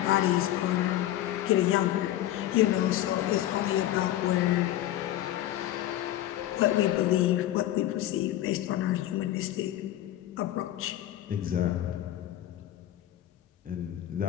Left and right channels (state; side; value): quieter; right; 13.4 dB